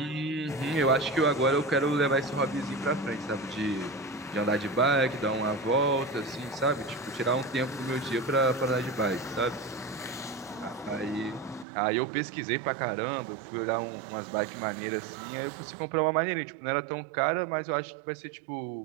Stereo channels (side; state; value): left; drops out; at 11.7 s